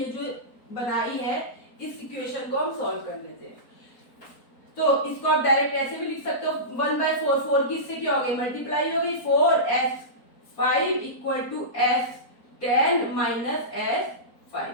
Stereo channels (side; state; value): right; late; 4.3 ms